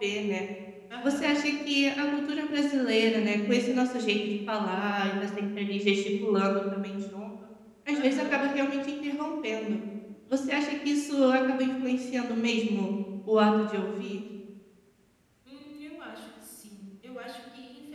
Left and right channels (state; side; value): identical; both; correlation 1.00